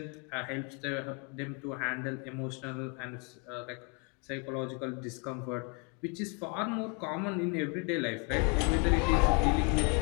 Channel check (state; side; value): quieter; right; 33.6 dB